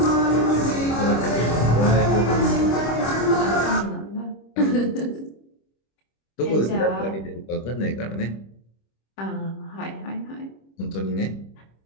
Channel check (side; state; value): right; late; 25 ms